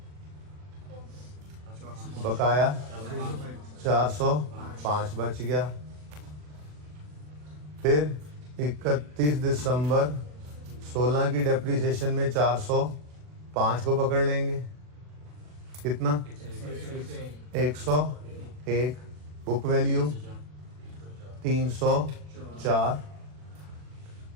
बकाया 405 बच गया। फिर 31 दिसंबर 16 की डेप्रिसिएशन में 405 को पकड़ लेंगे, कितना? 101, बुक वैल्यू 304।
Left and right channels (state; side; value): late; left; 40 ms